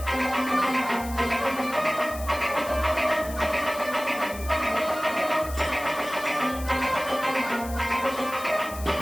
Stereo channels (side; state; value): left; noise; hiss, 14 dB below the sound